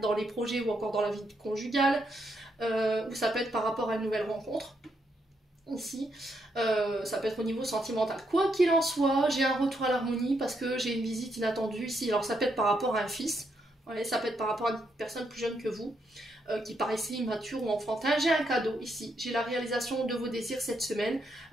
les projets ou encore dans la vie conjugale, ou ça peut être par rapport à une nouvelle rencontre. Ici, ça peut être au niveau sentimental. Quoi qu'il en soit, j'ai un retour à l'harmonie parce que j'ai une visite inattendue ici. Alors ça peut être par rapport à un fils, ouais, ça peut être par rapport à une personne plus jeune que vous, qui paraissait immature ou enfantin. J'ai un cadeau ici, j'ai la réalisation de vos désirs cette semaine.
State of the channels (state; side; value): normal; both; correlation 0.78